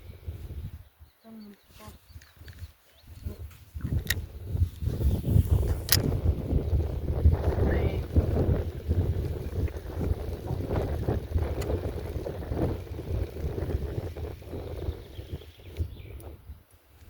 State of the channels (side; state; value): both; identical; correlation 1.00